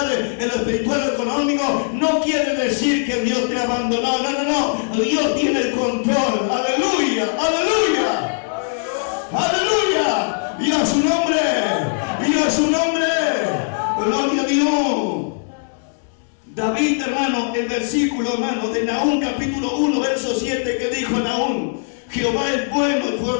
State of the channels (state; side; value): silent; right; digital silence